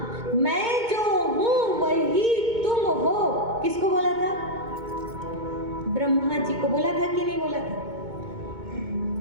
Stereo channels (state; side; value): late; left; 2.2 ms